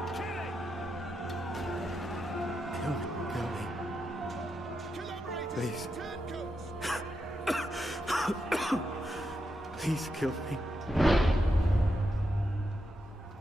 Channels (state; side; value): normal; both; correlation 0.85